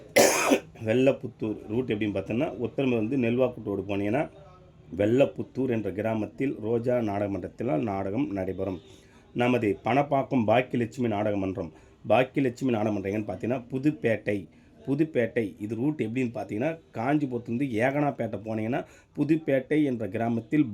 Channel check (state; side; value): identical; both; correlation 1.00